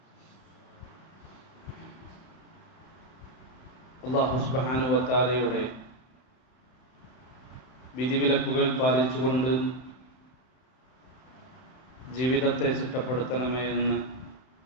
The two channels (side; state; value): right; late; 31 ms